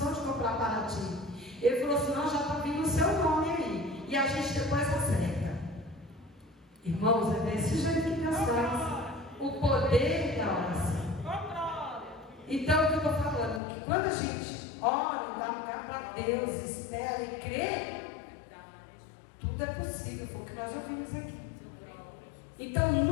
de comprar para ti. Ele falou assim: não, já está vindo o seu nome aí. E a gente depois acerta. Irmãos, é desse jeito que Deus faz. O poder da oração. Então, o que eu estou falando? Que quando a gente ora, dá lugar para Deus, espera e crê, tudo é possível, foi o que nós já vimos aqui. Então,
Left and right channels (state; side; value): drops out; right; at 13.6 s